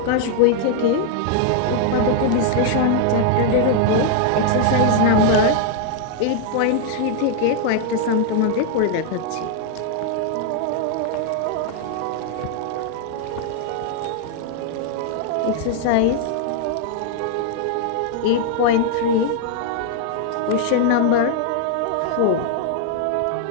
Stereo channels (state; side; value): different; both; correlation 0.00